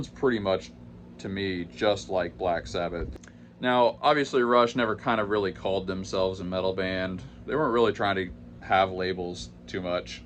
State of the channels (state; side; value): identical; both; correlation 1.00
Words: pretty much to me just like Black Sabbath. Now, obviously Rush never kind of really called themselves a metal band. They weren't really trying to have labels too much.